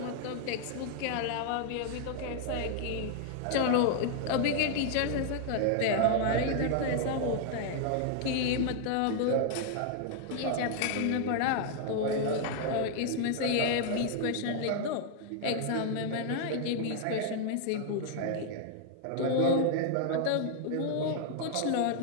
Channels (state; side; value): different; both; correlation 0.00